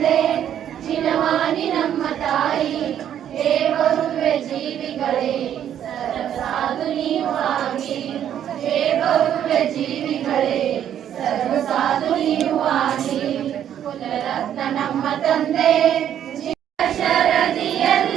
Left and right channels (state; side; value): quieter; left; 10.1 dB